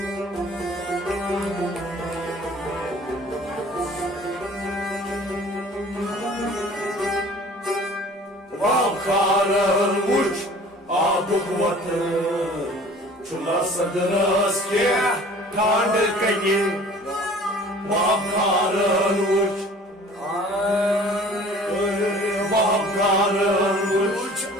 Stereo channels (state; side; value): normal; both; correlation 0.48